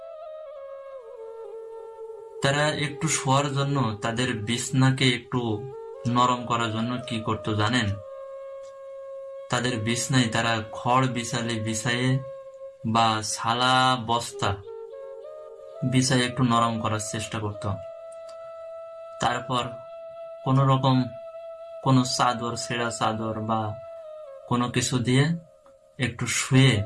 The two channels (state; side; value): identical; both; correlation 1.00